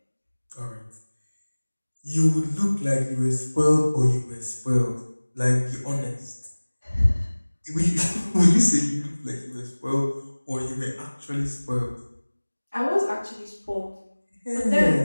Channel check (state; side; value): inverted; both; correlation -1.00